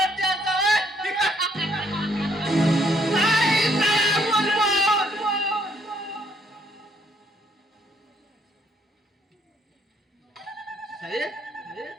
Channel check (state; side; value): normal; both; correlation 0.68